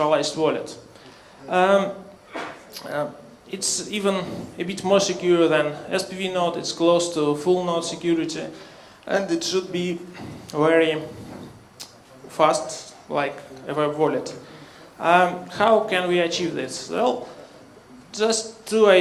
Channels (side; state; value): both; identical; correlation 1.00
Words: wallet. It's even a bit more secure than SPV node. It's close to full node security, and it should be very fast, like a web wallet. How can we achieve this? Well, just two